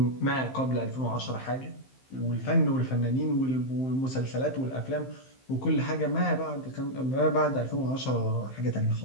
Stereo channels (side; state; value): right; late; 15 ms